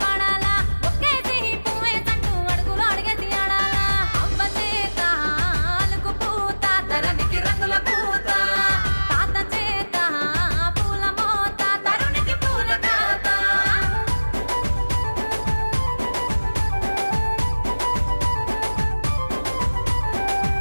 పాడాలా ఒక్కేసి పువ్వేసంటూ అడుగులు అడిగేసి ఆడాలా అవ్వ చేత అలుకు పూత ధరణికి రంగుల పూత తాత చేత పూల మోత తరుణికి పూల తాత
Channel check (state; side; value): inverted; both; correlation -1.00